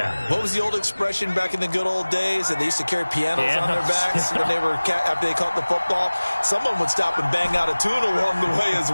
What was the old expression back in the good old days? That they used to carry pianos on their backs when they were after they caught the football. Someone would stop and bang out a tune along the way as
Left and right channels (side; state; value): both; inverted; correlation -1.00